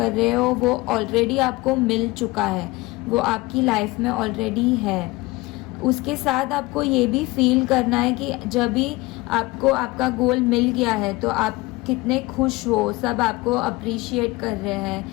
रहे हो वो ऑलरेडी आपको मिल चुका है, वो आपकी लाइफ में ऑलरेडी है. उसके साथ आपको ये भी फील करना है कि जब भी आपको आपका गोल मिल गया है तो आप कितने खुश हो, सब आपको अप्रिशिएट कर रहे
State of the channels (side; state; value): right; quieter; 21.8 dB